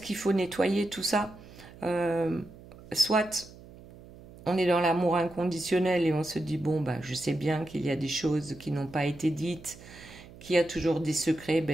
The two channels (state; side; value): noise; right; hum, 19 dB below the sound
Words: qu'il faut nettoyer tout ça. Soit on est dans l'amour inconditionnel et on se dit, bon, ben, je sais bien qu'il y a des choses qui n'ont pas été dites, qu'il y a toujours des secrets,